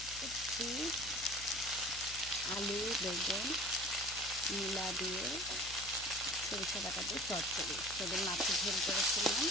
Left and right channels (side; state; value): left; noise; hum, 15 dB below the sound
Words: করছি আলু বেগুন মূলা দিয়ে সরিষা বাটা দিয়ে চচ্চড়ি। সেদিন মাছের ঝোল করেছিলাম,